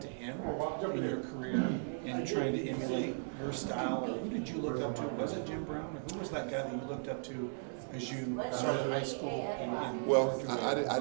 to him in your career and trying to emulate your style? Or who did you look up to? Was it Jim Brown? Or who was that guy that you looked up to as you started high school? Well, I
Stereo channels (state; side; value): silent; left; digital silence